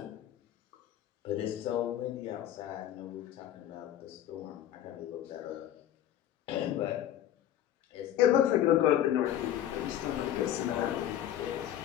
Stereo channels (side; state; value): right; quieter; 11.7 dB